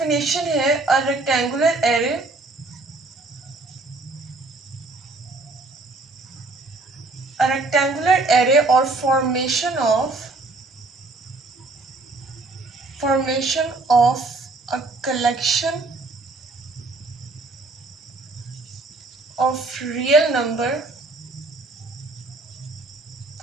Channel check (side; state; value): left; quieter; 3.3 dB